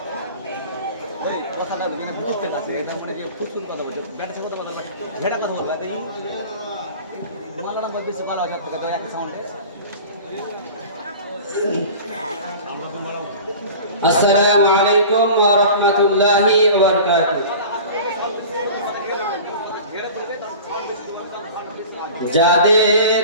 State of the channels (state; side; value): inverted; both; correlation -0.38